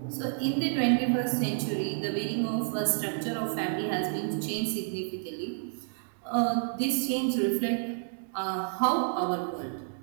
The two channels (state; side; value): silent; left; digital silence